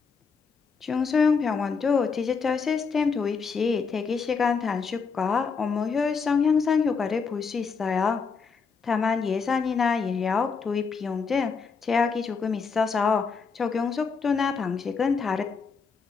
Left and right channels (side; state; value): right; quieter; 5.3 dB